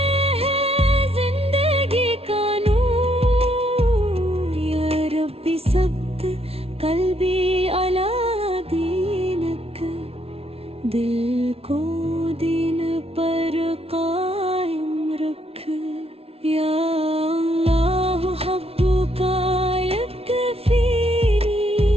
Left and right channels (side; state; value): left; late; 0.29 ms